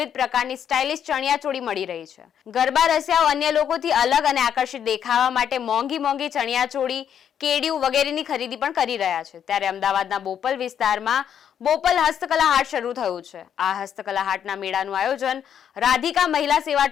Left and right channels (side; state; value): right; quieter; 8.8 dB